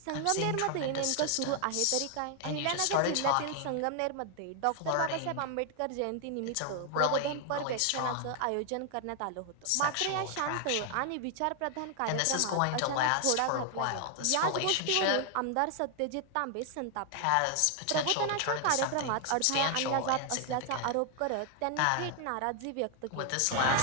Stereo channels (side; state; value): both; different; correlation 0.00